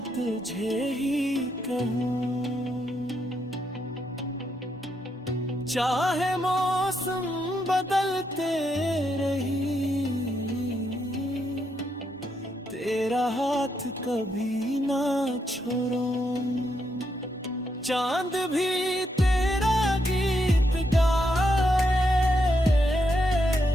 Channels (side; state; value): both; normal; correlation 0.79